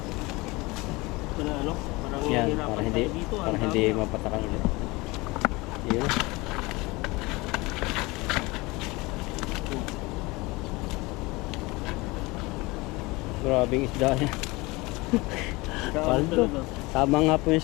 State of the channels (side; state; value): right; quieter; 23.2 dB